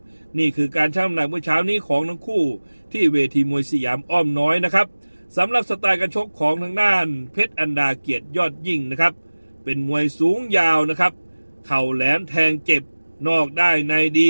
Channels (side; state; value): both; inverted; correlation -1.00